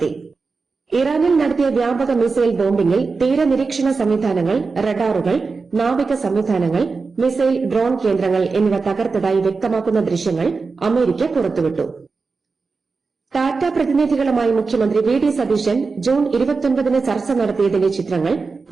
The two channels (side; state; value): left; quieter; 4.4 dB